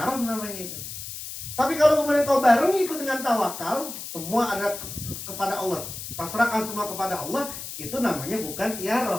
namanya itu. Tapi kalau kemudian kau barengi itu dengan tawakal, semua ada kepada Allah, pasrahkan semua kepada Allah, itu namanya bukan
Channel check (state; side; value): noise; left; hiss, 9 dB below the sound